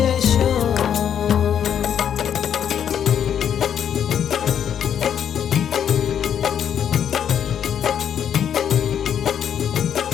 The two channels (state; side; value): quieter; right; 8.9 dB